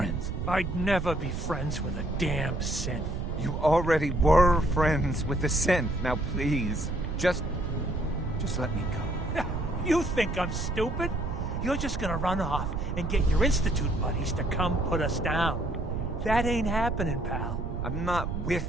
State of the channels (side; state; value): right; noise; rumble, 3 dB below the sound